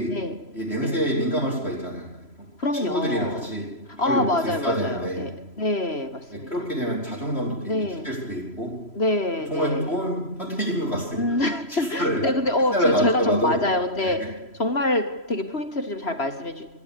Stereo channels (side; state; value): right; late; 3.0 ms